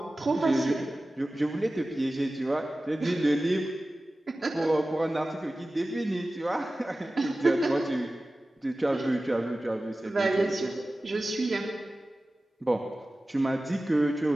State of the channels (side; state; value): both; normal; correlation 0.96